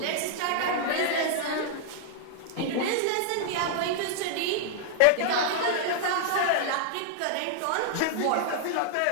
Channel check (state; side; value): different; both; correlation -0.01